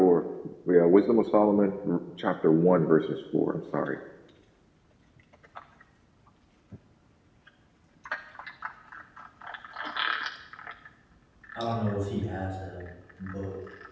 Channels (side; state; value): both; identical; correlation 1.00